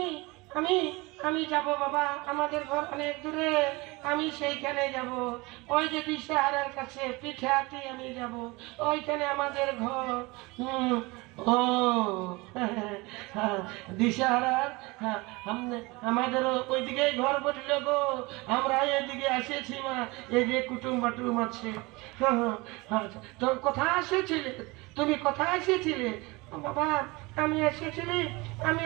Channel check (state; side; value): quieter; left; 24.1 dB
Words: আমি আমি যাব বাবা, আমাদের ঘর অনেক দূরে, আমি সেইখানে যাব। ওই যে দিশাহারার কাছে পিঠে হাতি আমি যাব, ওইখানে আমাদের ঘর। ও দিশাহারার আমাদেরও ওইদিকে ঘর বসল গো, আমরা এদিকে এসেছি মা, এই যে কুটুম বাটুম আছে। তো কোথায় এসেছিলে তুমি, কোথায় এসেছিলে? বাবা আমি এসেছিলি